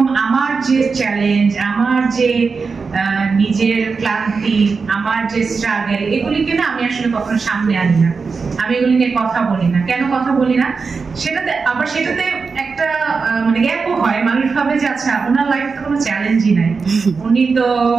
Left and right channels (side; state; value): left; quieter; 4.8 dB